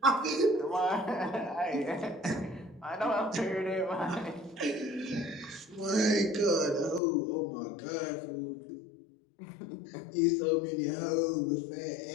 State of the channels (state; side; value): drops out; right; at 7.0 s